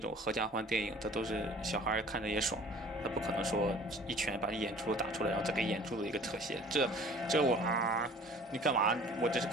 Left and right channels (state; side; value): normal; both; correlation 0.48